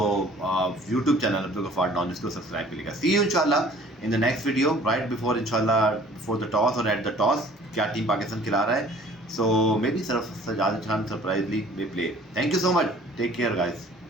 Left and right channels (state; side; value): normal; both; correlation 0.51